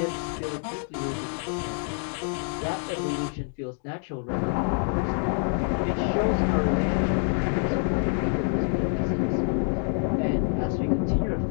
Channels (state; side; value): silent; right; 55 dB below the other